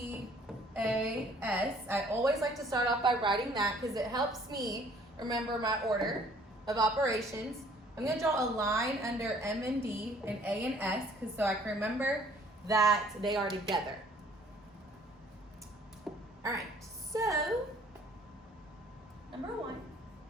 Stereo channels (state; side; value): normal; both; correlation 0.58